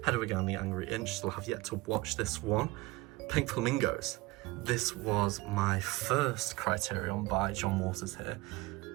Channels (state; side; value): quieter; left; 21.1 dB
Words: Hedwig Again, The Angry Inch. Still have yet to watch this one. Pink Flamingos. This was my first Criterion by John Waters here.